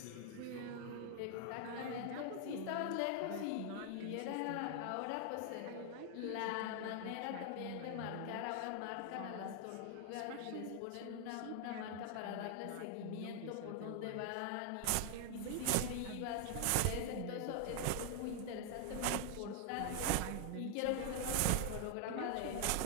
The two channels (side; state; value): both; different; correlation 0.00